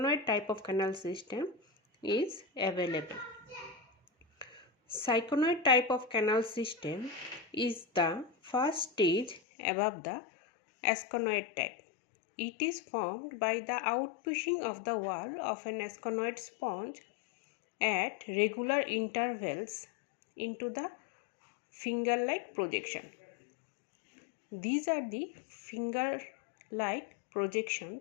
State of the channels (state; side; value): drops out; right; at 9.4 s